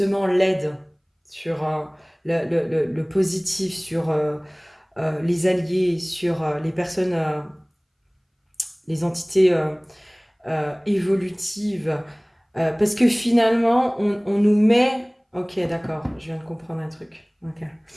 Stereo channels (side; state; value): both; identical; correlation 1.00